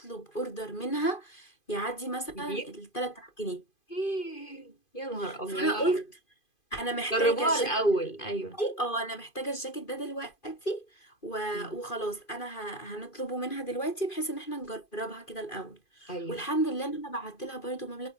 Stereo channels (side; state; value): right; late; 2.5 ms